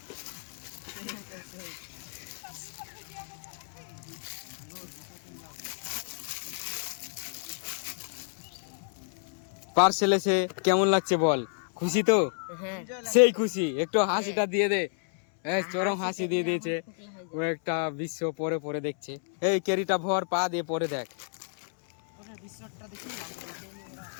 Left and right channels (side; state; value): right; silent; 58 dB below the other